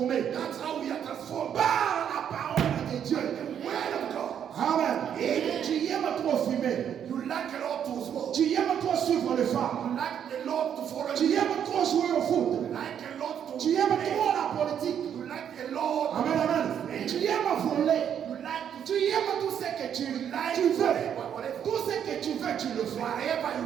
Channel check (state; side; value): quieter; left; 8.9 dB